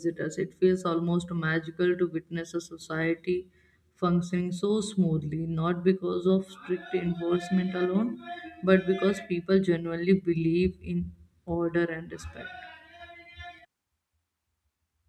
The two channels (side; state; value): both; identical; correlation 1.00